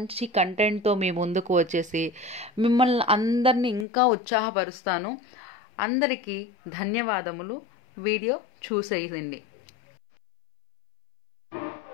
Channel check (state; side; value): drops out; right; at 3.9 s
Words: కంటెంట్తో మీ ముందుకు వచ్చేసి మిమ్మల్ని అందరినీ ఇంకా ఉత్సాహపరుస్తాను. అందరికీ ధన్యవాదములు. వీడియో చూసేయండి.